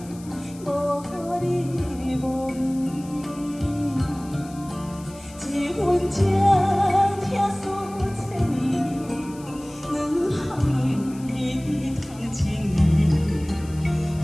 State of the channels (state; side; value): noise; left; hiss, 21 dB below the sound